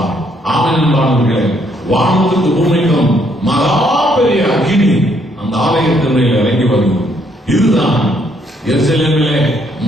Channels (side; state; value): both; normal; correlation 0.70